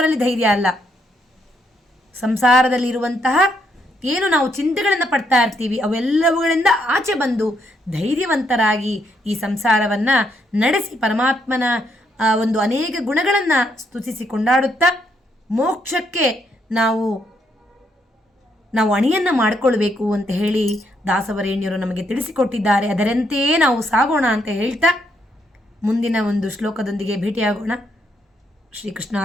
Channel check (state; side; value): normal; both; correlation 0.75